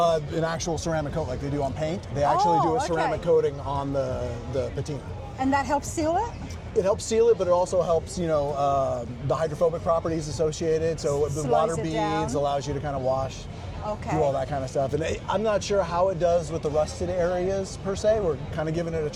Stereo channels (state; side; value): identical; both; correlation 1.00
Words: actual ceramic coat like they do on paint. They actually do a ceramic coating on the patina. And that helps seal it? It helps seal it, but it also helps, the hydrophobic properties associated. So the Slows water it beads down. allows you to kind of wash, Okay. do all that kind of stuff. And I'm not sure how it does with the rusted areas per se. We're kind of giving it a